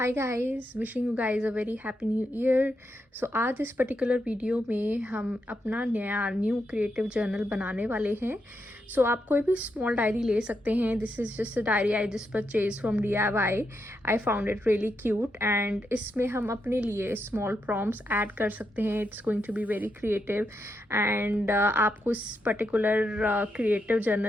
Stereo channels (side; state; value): both; normal; correlation 0.83